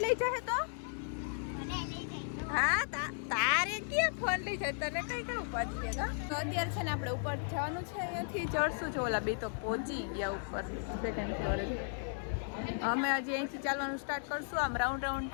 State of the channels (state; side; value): silent; right; digital silence